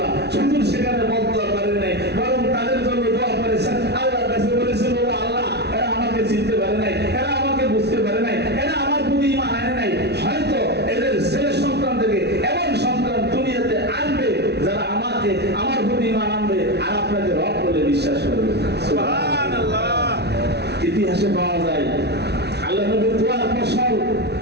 শুধু সেখানে বদদোয়া করেন নাই, বরং তাদের জন্য দোয়া করেছেন। আল্লাহর কাছে বলেছেন, ও আল্লাহ, এরা আমাকে চিনতে পারে নাই, এরা আমাকে বুঝতে পারে নাই, এরা আমার প্রতি ঈমান আনে নাই। হয়তো এদের ছেলে সন্তান থেকে এমন সন্তান দুনিয়াতে আনবে যারা আমাকে, আমার প্রতি ঈমান আনবে আর আপনাকে রব বলে বিশ্বাস করবে। সুবহানাল্লাহ। ইতিহাসে পাওয়া যায় আল্লাহ নবীর দোয়ার ফসল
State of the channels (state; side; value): late; left; 0.49 ms